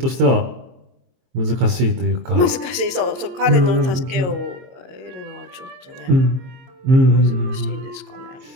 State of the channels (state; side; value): late; left; 22 ms